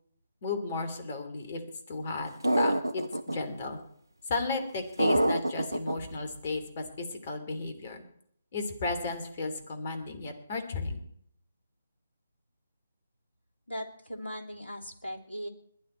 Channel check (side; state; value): both; inverted; correlation -0.80